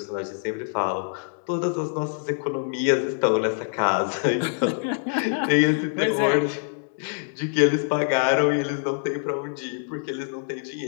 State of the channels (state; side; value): silent; right; digital silence